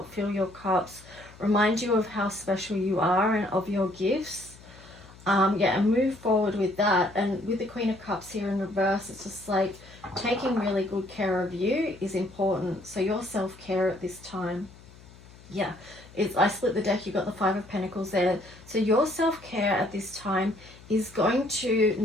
fill your cups, remind you of how special you are and of your gifts. Yeah, and move forward with that. And with the Queen of Cups here in reverse, it's just like taking really good care of you is important. So your self-care at this time, yeah, I split the deck, you got the Five of Pentacles there. So your self-care at this time is going to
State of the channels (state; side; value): noise; left; hum, 22 dB below the sound